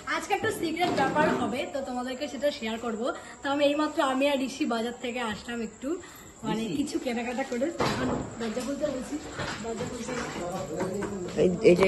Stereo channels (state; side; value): identical; both; correlation 1.00